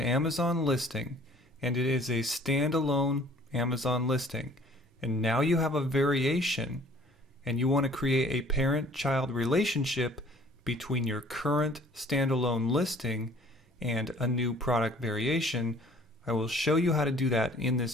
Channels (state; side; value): normal; both; correlation 0.54